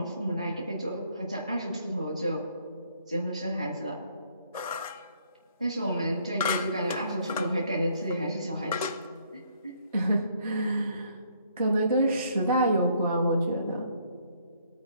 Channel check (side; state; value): both; inverted; correlation -0.66